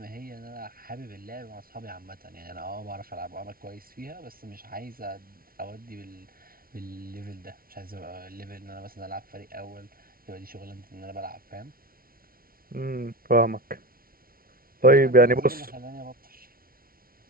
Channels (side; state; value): left; late; 0.43 ms